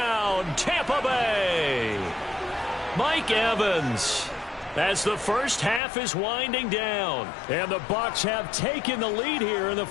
Tampa Bay. Mike Evans as the first half is winding down. And the Bucs have taken the lead here in the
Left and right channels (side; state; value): right; drops out; at 5.8 s